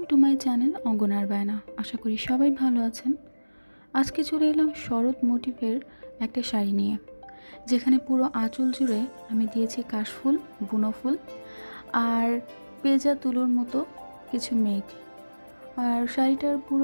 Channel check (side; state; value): both; inverted; correlation -1.00